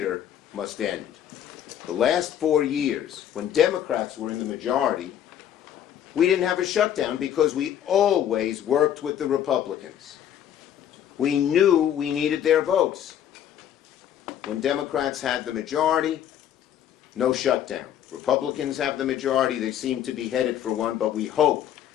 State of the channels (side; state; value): right; quieter; 10.3 dB